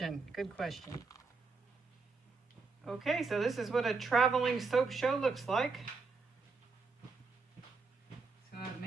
Good question. Okay, so this is what a traveling soap show looks like. So I've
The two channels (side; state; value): left; quieter; 4.3 dB